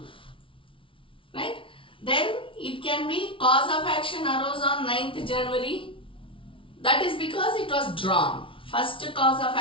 Right? Then it can be cause of action arose on 9th January. That is because it was drawn. First cause of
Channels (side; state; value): right; late; 0.25 ms